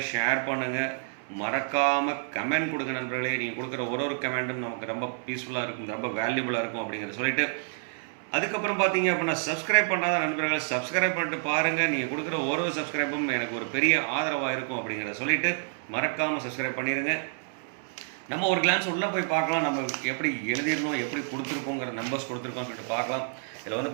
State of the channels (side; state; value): left; silent; 59 dB below the other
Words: ஷேர் பண்ணுங்கள், மறக்காமல் கமெண்ட் கொடுங்க நண்பர்களே. நீங்கள் கொடுக்குற ஒரு கமெண்ட்டும் நமக்கு ரொம்ப பீஸ்ஃபுல்லாக இருக்கும், ரொம்ப வேல்யூபுளாக இருக்கும் அப்படிங்கிறத சொல்லிட்டு அதுக்கப்புறம் பார்த்தீங்க அப்படின்னா சப்ஸ்கிரைப் பண்ணாத நண்பர்கள் சப்ஸ்கிரைப் பண்ணிட்டு பாருங்கள். நீங்கள் கொடுக்குற ஒரு சப்ஸ்கிரைபும் எனக்கு ஒரு பெரிய ஆதரவாக இருக்கும் அப்படிங்கிறத சொல்லிவிட்டு மறக்காமல் சப்ஸ்கிரைப் பண்ணிடுங்க. நம்ம ஒரு கிளான்ஸ் உள்ளே போய் பார்க்கலாம், நம்ம எப்படி எழுதிடணும், எப்படி கொடுத்துருக்கோங்கிற நம்பர்ஸ் கொடுத்துருக்கோம்னு சொல்லிட்டு பார்க்கலாம். இதில் வந்து